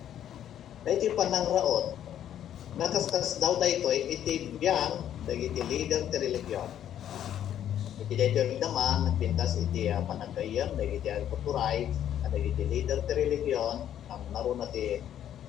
Dahil iti panangraot, nakaskas daw dahito iti biyang dahil iti leader ti religion. Iti dahito naman, nagpintas iti panagayam dahil iti agputuray, dahil iti leader ti religion, ang naroon na ti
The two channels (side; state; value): right; quieter; 10.6 dB